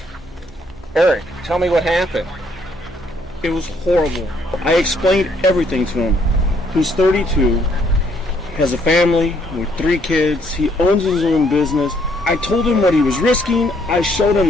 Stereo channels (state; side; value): normal; both; correlation 0.68